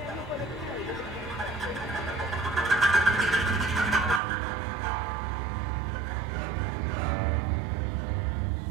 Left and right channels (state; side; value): drops out; left; at 4.2 s